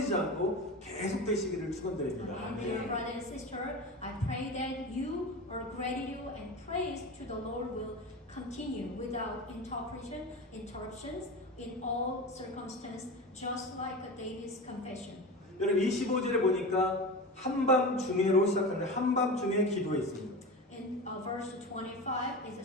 않고 계속되시기를 축원드립니다. Dear brother and sister, I pray that your gratitude and praise to the Lord will continue without interruptions in all circumstances, just like David's confession. 여러분, 25절에 보니까 한밤중에로 시작하는데 한밤중에 기도했습니다. In verse 25, it's a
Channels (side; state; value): both; normal; correlation 0.27